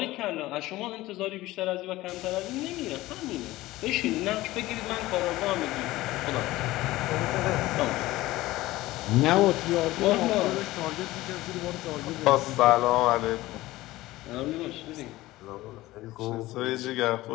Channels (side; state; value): right; quieter; 17.6 dB